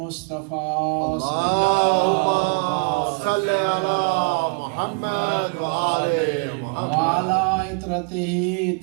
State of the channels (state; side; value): quieter; left; 33.7 dB